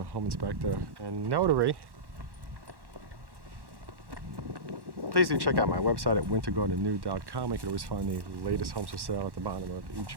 Home Inspector, and Notary. Please do check out my website at wintergardennew.com. You can always find the latest homes for sale at the bottom of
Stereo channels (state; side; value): late; left; 1.1 ms